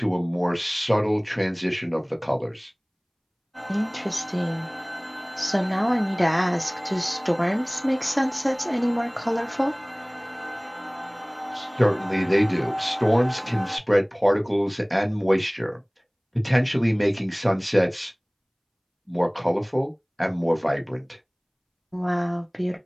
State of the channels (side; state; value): both; identical; correlation 1.00